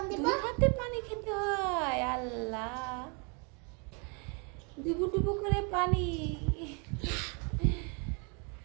দিব। দুই হাতে পানি খেতে হয়। আল্লাহ, ডুবু ডুবু করে পানি।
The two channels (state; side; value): quieter; left; 34.7 dB